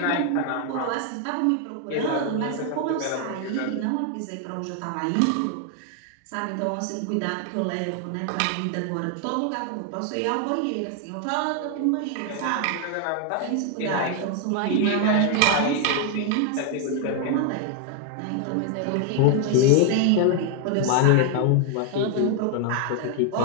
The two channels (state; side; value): different; both; correlation 0.00